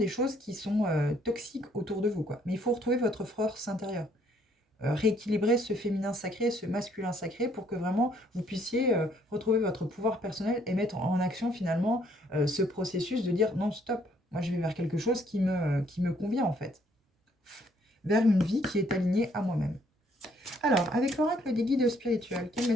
choses qui sont toxiques autour de vous, quoi. Mais il faut retrouver votre force intérieure. Rééquilibrer ce féminin sacré, ce masculin sacré, pour que vraiment vous puissiez retrouver votre pouvoir personnel et mettre en action finalement ce processus de dire non, stop, moi je vais vers quelque chose qui me convient en fait. Vers une vie qui est alignée à moi-même. Alors, avec l'oracle des guides spirituels, quel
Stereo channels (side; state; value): both; normal; correlation 0.66